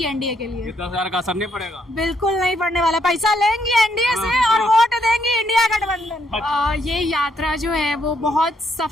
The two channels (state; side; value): normal; both; correlation 0.73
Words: एनडीए के लिए। 10,000 का असर नहीं पड़ेगा? बिल्कुल नहीं पड़ने वाला। पैसा लेंगी एनडीए से और वोट देंगी इंडिया गठबंधन। ये यात्रा जो है वो बहुत